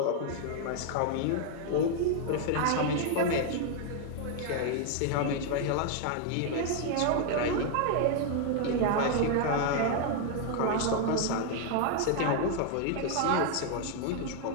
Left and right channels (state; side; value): different; both; correlation 0.00